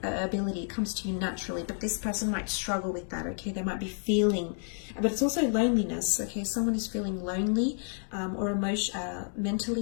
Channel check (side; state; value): right; silent; 57 dB below the other